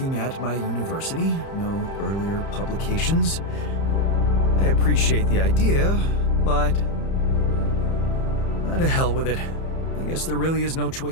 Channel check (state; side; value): late; right; 30 ms